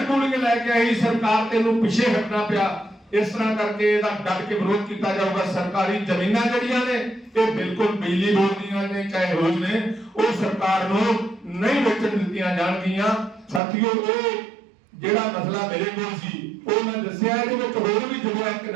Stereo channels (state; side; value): drops out; left; at 13.6 s